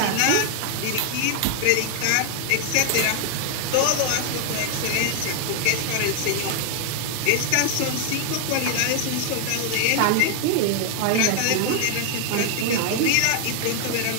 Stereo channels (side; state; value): both; different; correlation 0.00